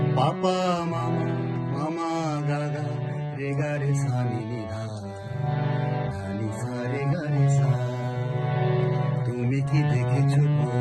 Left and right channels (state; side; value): identical; both; correlation 1.00